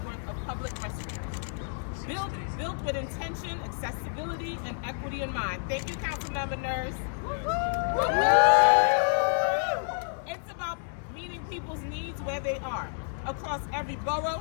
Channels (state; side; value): silent; right; digital silence